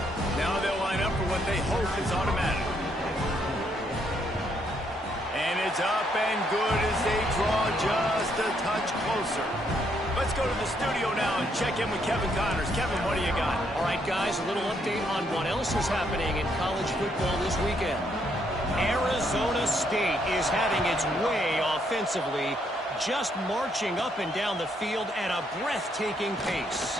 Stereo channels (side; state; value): both; normal; correlation 0.73